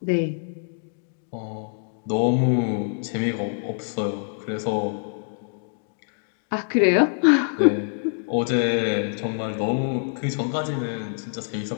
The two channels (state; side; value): silent; right; digital silence